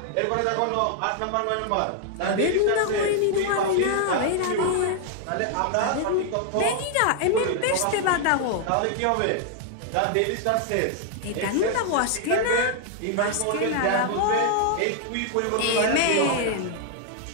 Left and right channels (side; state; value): both; different; correlation 0.00